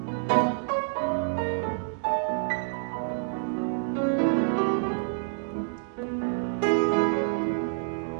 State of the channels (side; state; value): left; silent; digital silence